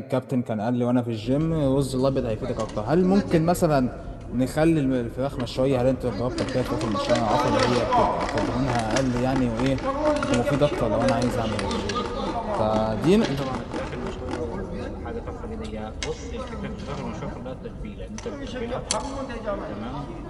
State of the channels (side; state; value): both; identical; correlation 1.00